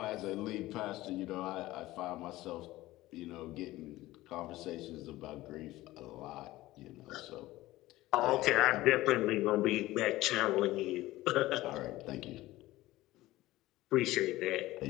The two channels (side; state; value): right; quieter; 17.3 dB